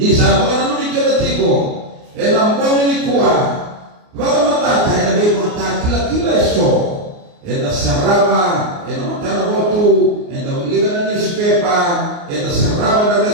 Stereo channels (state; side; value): late; left; 29 ms